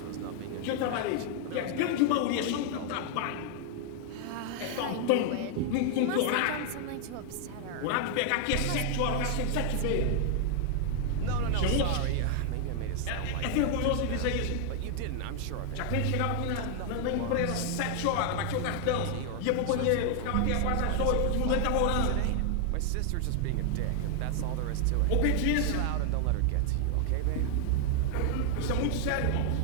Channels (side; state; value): both; different; correlation 0.00